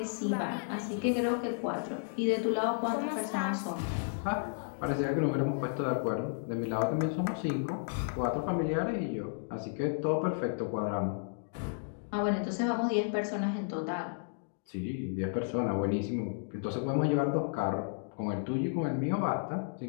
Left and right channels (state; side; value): silent; right; digital silence